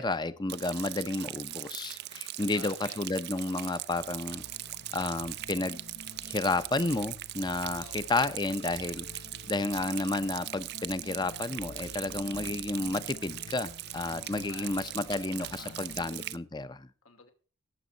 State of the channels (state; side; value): normal; both; correlation 0.45